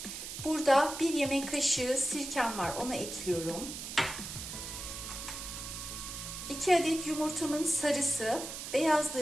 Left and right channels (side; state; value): right; noise; hiss, 8 dB below the sound